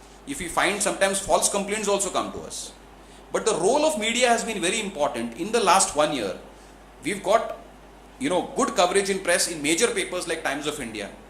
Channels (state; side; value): identical; both; correlation 1.00